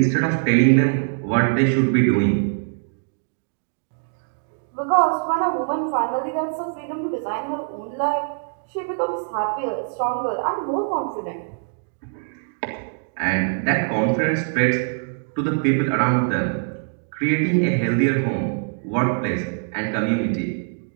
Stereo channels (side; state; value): left; silent; digital silence